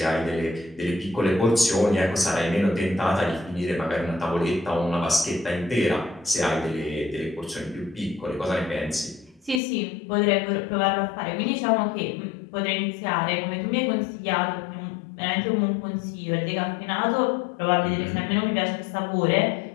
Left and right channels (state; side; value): drops out; right; at 9.6 s